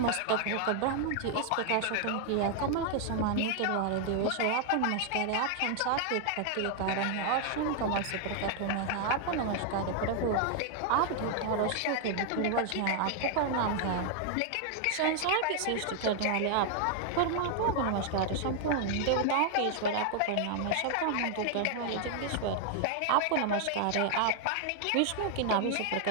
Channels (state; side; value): different; both; correlation 0.00